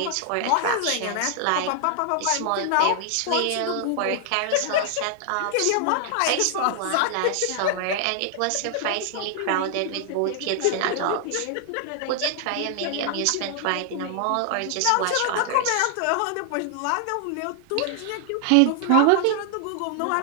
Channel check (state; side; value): different; both; correlation 0.00